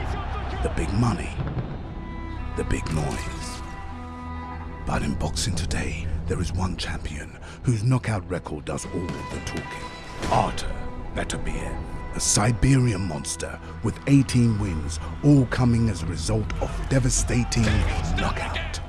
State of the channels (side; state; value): both; identical; correlation 1.00